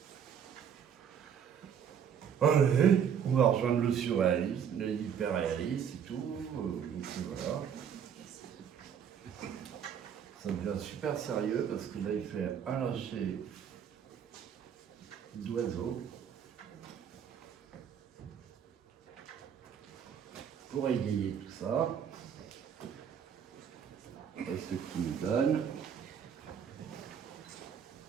Allez, on va rejoindre le surréalisme, l'hyperréalisme et tout. Donc voilà. Ça devient super sérieux parce que là il fait un lâcher d'oiseau pour égayer tout ça. C'est ce qui nous donne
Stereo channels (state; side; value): quieter; left; 8.0 dB